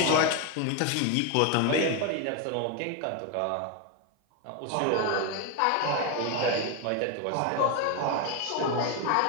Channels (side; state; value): both; different; correlation 0.02